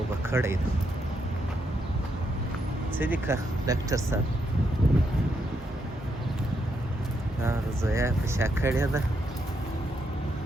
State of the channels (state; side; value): normal; both; correlation 0.79